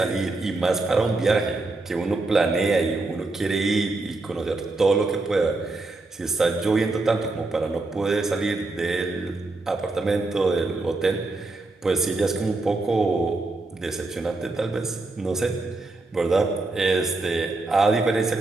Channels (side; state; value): left; quieter; 3.2 dB